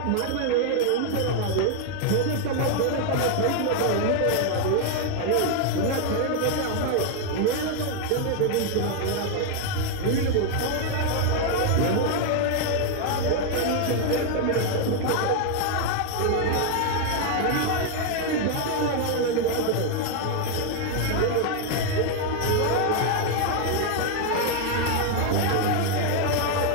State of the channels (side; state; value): both; different; correlation 0.00